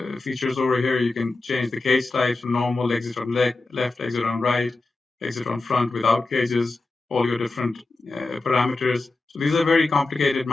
features over here. You can change the cage types from normal, exit on left, exit on right, exit on front without cages, all your different parameters. So these are very complicated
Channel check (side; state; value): right; quieter; 3.3 dB